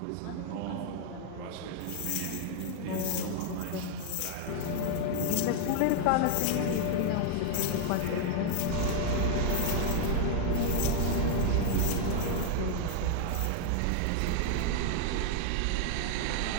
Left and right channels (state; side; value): different; both; correlation 0.00